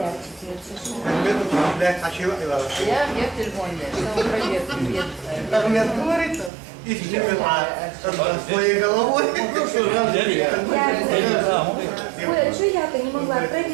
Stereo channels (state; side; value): drops out; left; at 6.5 s